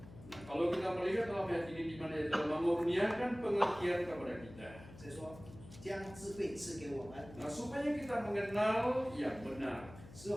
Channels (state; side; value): noise; left; hum, 17 dB below the sound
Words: Nah, kalau kita melihat dalam ayat ini di mana dia telah mengurniakan pengertian kepada kita. 所以说，将智慧赐给我们， Nah, supaya kita mengenal yang benar 使